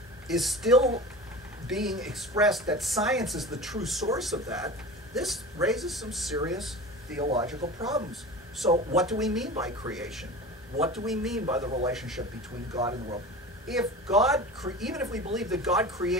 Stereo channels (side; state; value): both; normal; correlation 0.33